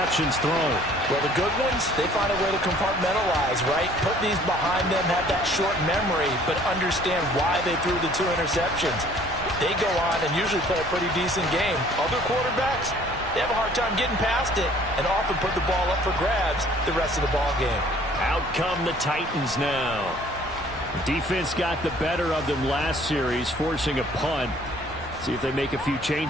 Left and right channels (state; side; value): normal; both; correlation 0.55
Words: thrown. Well, the good ones, they find a way to compartmentalize, right? Put these behind them, have that short memory, but understand why they threw the 2 interceptions. They go on and usually play a pretty decent game. Other quarterbacks, they have a hard time getting past it and often put the ball up for grabs the rest of the ball game. Out come the Titans now. Defense got the better of them last series, forcing a punt. See if they make a few